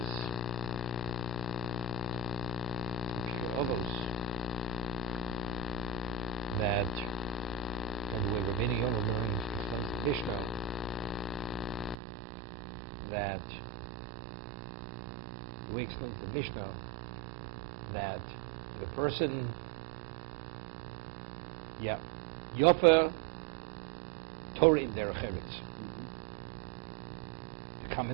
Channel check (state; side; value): drops out; left; at 12.0 s